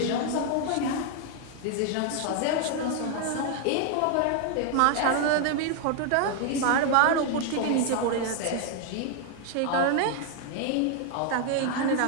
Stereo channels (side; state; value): both; different; correlation 0.00